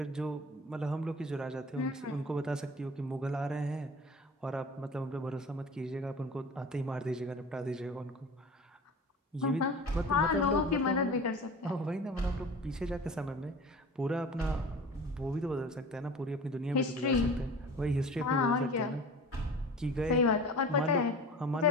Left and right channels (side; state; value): both; normal; correlation 0.38